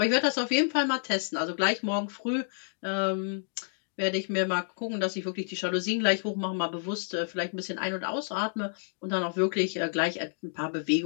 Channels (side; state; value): right; silent; digital silence